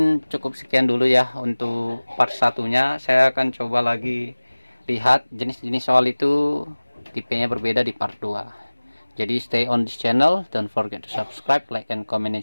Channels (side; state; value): both; inverted; correlation -1.00